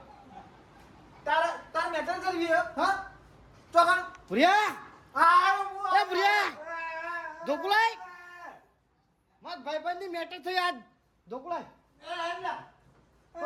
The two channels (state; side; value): identical; both; correlation 1.00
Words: તારા મેટર કરવી હે હા ચોકન પ્રિયા આ એ પ્રિયા ઢોકળાઈ મત ભાઈબંધની મેટર થઈ આજ ઢોકળાઈ